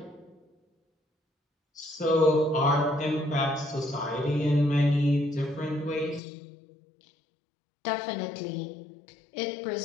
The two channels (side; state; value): right; drops out; at 6.2 s